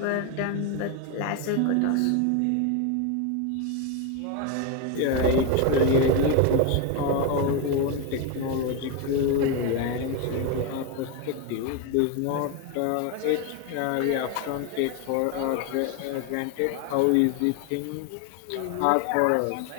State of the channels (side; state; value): both; different; correlation 0.02